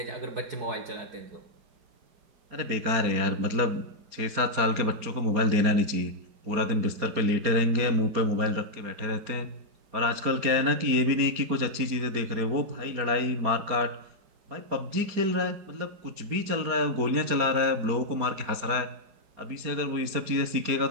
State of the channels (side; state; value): left; late; 4.3 ms